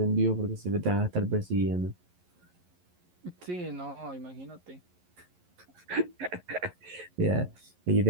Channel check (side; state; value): left; late; 11 ms